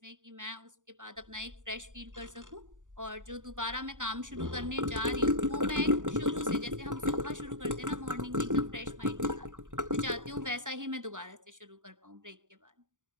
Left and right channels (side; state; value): left; late; 0.87 ms